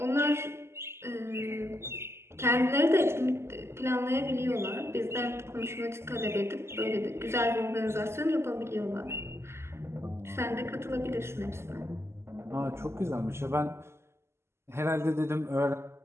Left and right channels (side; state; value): left; late; 0.12 ms